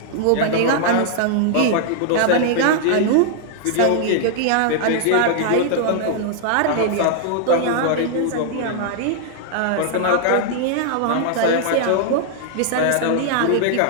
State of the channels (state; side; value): different; both; correlation -0.01